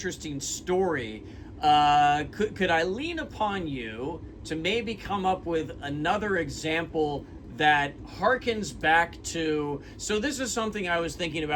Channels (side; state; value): both; identical; correlation 1.00